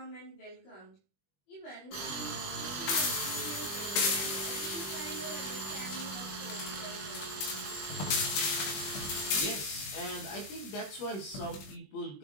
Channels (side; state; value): right; late; 21 ms